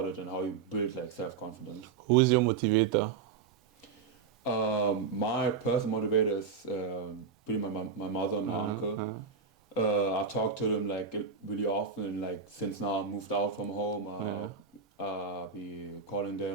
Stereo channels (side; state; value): left; quieter; 5.5 dB